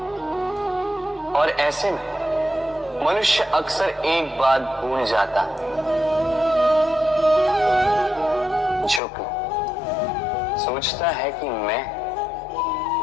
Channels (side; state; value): right; drops out; at 9.0 s